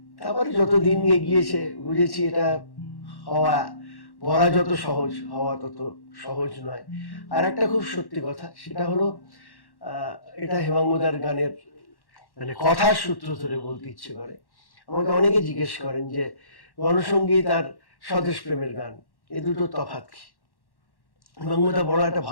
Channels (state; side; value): late; right; 1.1 ms